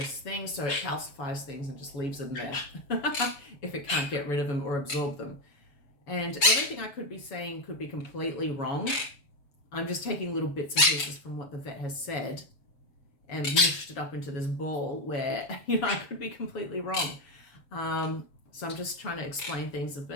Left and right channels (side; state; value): right; late; 7.1 ms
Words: things. So it calcifies things and just leaves them there if it can't get rid of them or absorb them. And everything I could be saying could be completely wrong. I'm just taking little bits and pieces from what the vet has said and mushed it up into this ball where, you know, I could be completely wrong. So I'm just trying to explain things the